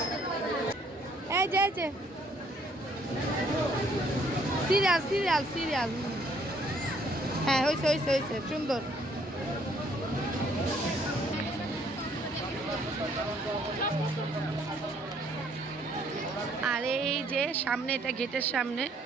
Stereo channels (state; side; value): normal; both; correlation 0.64